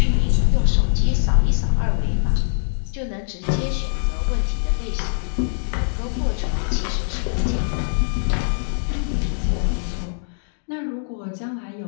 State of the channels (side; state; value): right; silent; digital silence